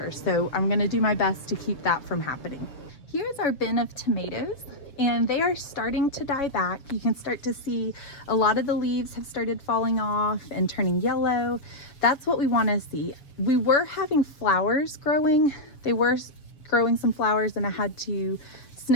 So I'm gonna do my best to keep that from happening. Here's our bin of tomatoes, and they are starting to die back. You can start to see a lot of the leaves have started falling off and turning yellow. That's what we wanna see. We were having flowers growing. They were growing some flowers, and I had to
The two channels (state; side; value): late; right; 7.3 ms